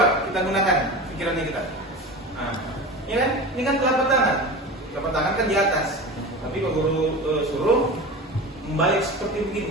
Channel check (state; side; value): normal; both; correlation 0.31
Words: kita gunakan pikirannya kita. Nah, ya kan? Ini kan telapak tangan. Telapak tangan kan di atas. Tapi Pak Guru suruh membalik seperti